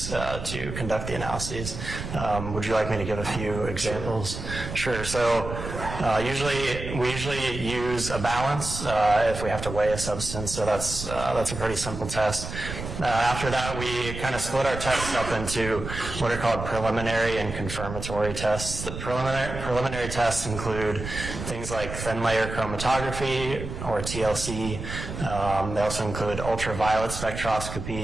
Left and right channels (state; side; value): noise; right; rumble, 7 dB below the sound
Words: to conduct the analyses. Would you like me to give a few examples? Sure. So we usually use a balance if we have to weigh a substance. So that's a pretty simple test. After that, we kind of split our tests up into what are called preliminary and confirmatory tests. The preliminary tests include things like thin layer chromatography or TLC. They also include ultraviolet